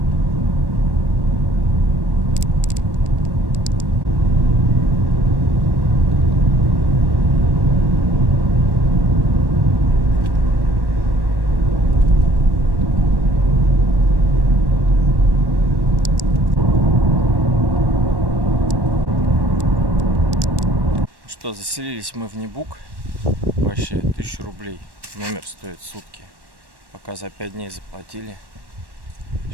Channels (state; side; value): late; left; 1.1 ms